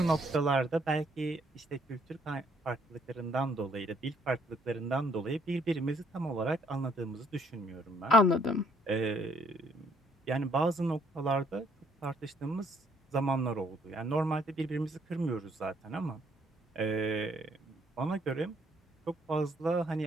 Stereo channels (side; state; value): both; normal; correlation 0.67